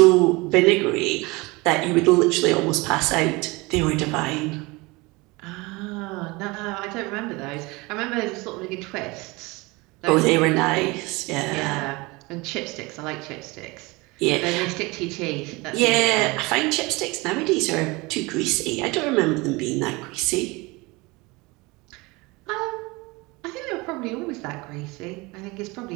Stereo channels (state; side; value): quieter; left; 24.1 dB